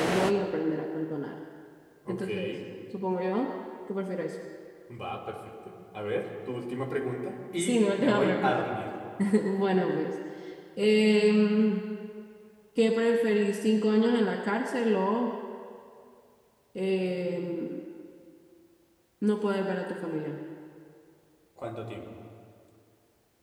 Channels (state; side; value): identical; both; correlation 1.00